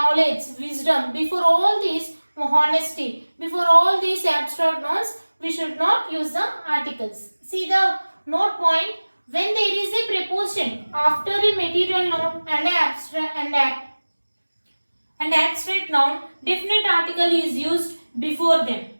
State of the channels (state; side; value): inverted; both; correlation -1.00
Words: wisdom. Before all these, honesty. Before all these abstract nouns, we should not use the articles. See the note point. When there is a preposition after a material noun and abstract noun, definite article is used before them.